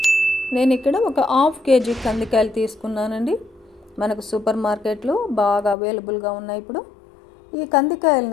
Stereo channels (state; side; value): drops out; right; at 5.8 s